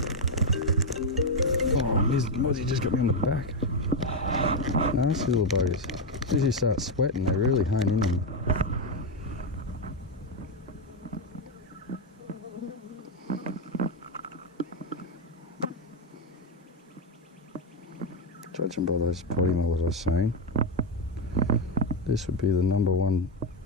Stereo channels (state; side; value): normal; both; correlation 0.05